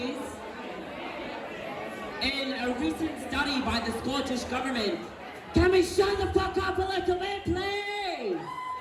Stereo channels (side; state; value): both; identical; correlation 1.00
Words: In a recent study by the Scottish Government, can we shut the fuck up a little bit, please?